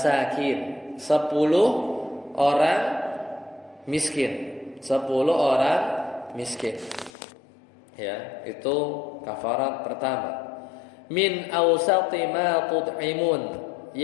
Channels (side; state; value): right; drops out; at 7.1 s